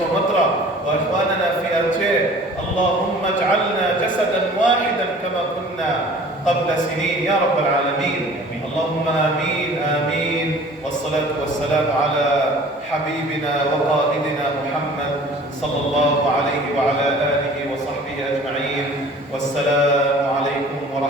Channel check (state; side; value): normal; both; correlation 0.47